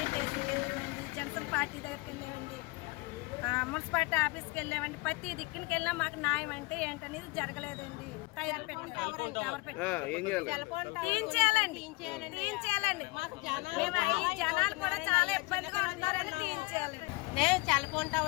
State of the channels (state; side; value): quieter; right; 24.0 dB